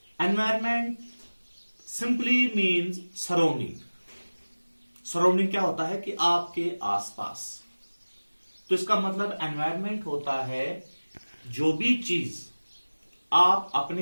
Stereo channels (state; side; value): inverted; both; correlation -1.00